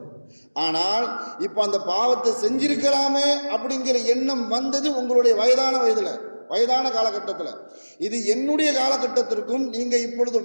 ஆனால் இப்போ அந்த பாவத்தை செஞ்சிருக்கலாமே அப்படிங்கிற எண்ணம் வந்தது உங்களுடைய வயதான காலகட்டத்தில். இது என்னுடைய காலகட்டத்திற்கும் நீங்கள் இப்பொழுது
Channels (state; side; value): inverted; both; correlation -1.00